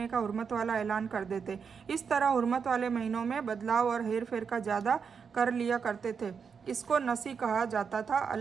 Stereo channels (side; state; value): left; quieter; 6.2 dB